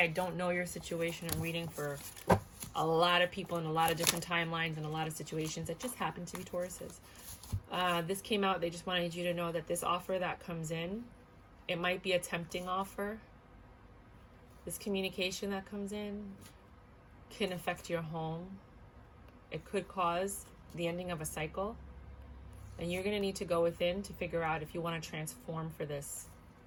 don't know your situation. I'm reading for a lot of people in a lot of different timelines and a lot of situations that just happen to be Tauruses. This came out. They just wanted you to know that this offer that comes in, it might be a tempting offer. This communication that comes in can affect your home. It could cause the ending of a cycle. And you're going to need to go within to figure out if you want to transform for this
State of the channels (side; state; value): both; identical; correlation 1.00